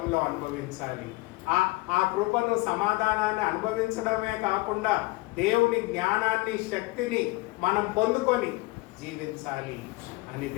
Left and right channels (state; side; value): quieter; right; 22.9 dB